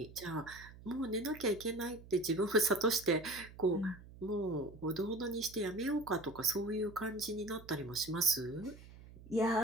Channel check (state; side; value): noise; right; hum, 18 dB below the sound